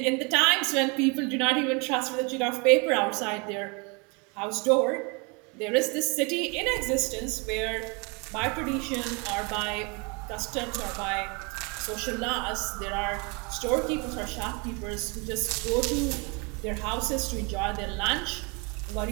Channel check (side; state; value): left; quieter; 31.2 dB